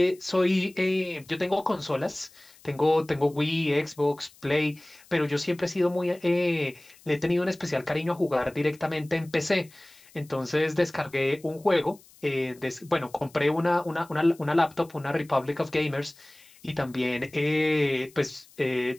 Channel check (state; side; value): noise; left; hiss, 26 dB below the sound